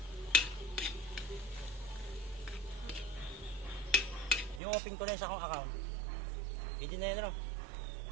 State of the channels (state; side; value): drops out; left; at 4.6 s